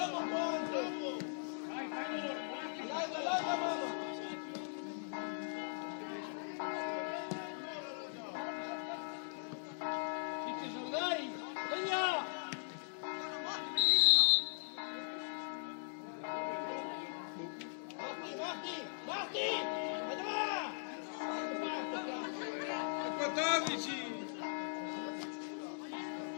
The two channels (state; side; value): silent; right; digital silence